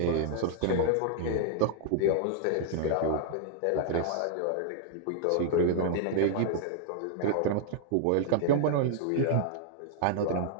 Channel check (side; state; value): both; different; correlation -0.01